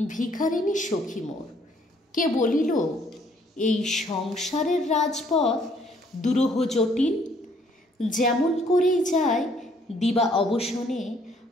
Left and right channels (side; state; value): both; normal; correlation 0.64